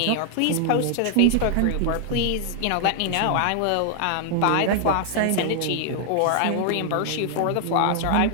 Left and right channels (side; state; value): both; different; correlation 0.00